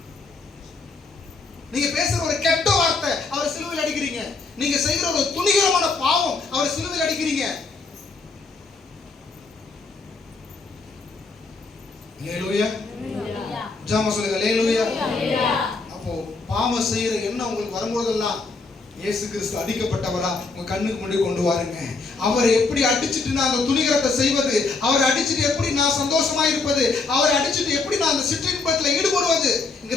நீங்க பேசுற ஒரு கெட்ட வார்த்தை அவரை சிலுவையில் அடிக்கிறீங்க. நீங்க செய்கிற ஒரு துணிகரமான பாவம் அவரை சிலுவையில் அடிக்கிறீங்க. அல்லேலூயா. ஜாம சொல்லுங்க. அல்லேலூயா. அப்போ பாவம் செய்யற எண்ணம் உங்களுக்கு வரும்போதெல்லாம் இயேசு கிறிஸ்து அடிக்கப்பட்டவரா உங்க கண்ணுக்கு முன்னாடி கொண்டு வாருங்க. அவரை எப்படி அடிச்சுட்டு நான் அந்த துணிகரத்தை செய்வது, அவரை அடிச்சுட்டு எப்படி நான் சந்தோஷமா இருப்பது, அவரை அடிச்சுட்டு எப்படி நான் அந்த சிற்றின்பத்தில்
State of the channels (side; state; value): right; quieter; 4.0 dB